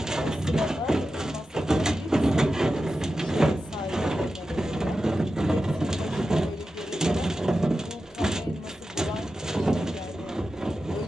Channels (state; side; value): normal; both; correlation 0.92